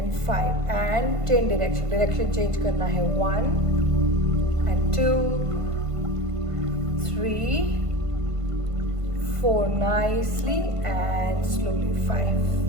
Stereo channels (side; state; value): left; late; 1.5 ms